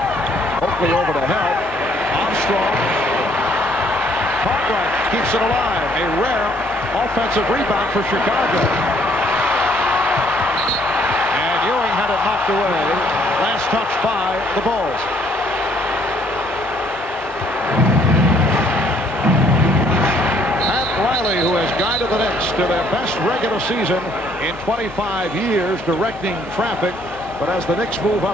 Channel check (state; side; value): normal; both; correlation 0.64